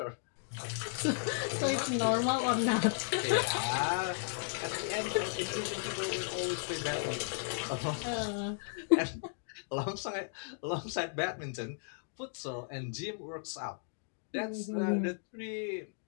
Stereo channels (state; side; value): silent; right; digital silence